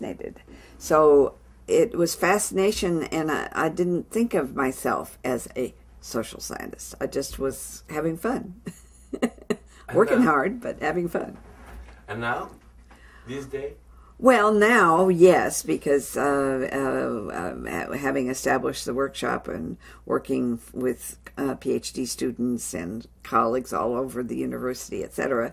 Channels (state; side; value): identical; both; correlation 1.00